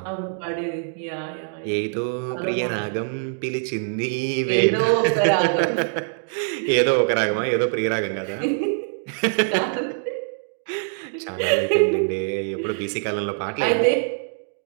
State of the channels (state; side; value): silent; left; 63 dB below the other